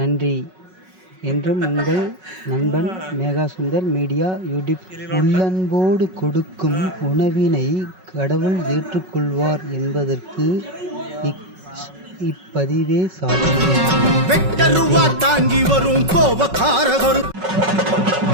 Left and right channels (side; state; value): left; late; 5.4 ms